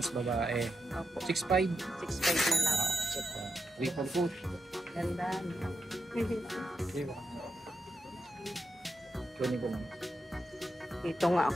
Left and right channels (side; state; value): both; normal; correlation 0.85